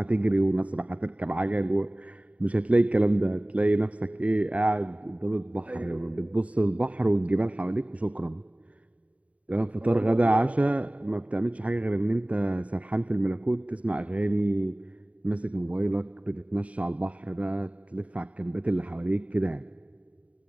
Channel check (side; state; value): left; late; 0.067 ms